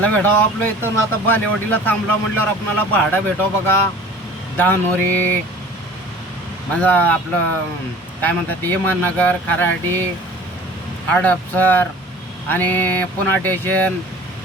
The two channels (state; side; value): normal; both; correlation 0.45